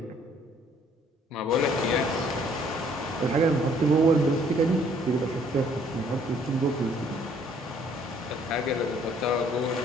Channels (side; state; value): both; normal; correlation 0.61